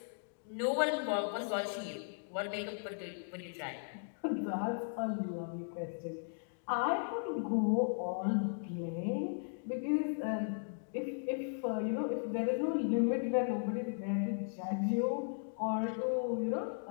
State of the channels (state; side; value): silent; right; digital silence